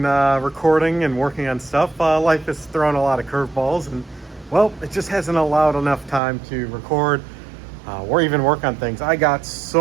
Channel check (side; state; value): left; drops out; at 6.2 s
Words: recording and working on stuff. Life has thrown a lot of curveballs, and well, it just hasn't allowed enough time to record or even work on things. I got